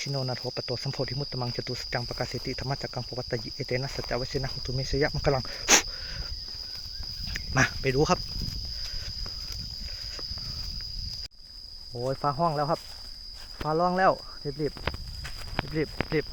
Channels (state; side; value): identical; both; correlation 1.00